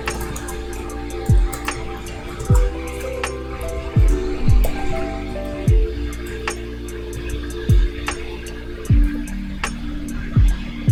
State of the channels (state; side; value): identical; both; correlation 1.00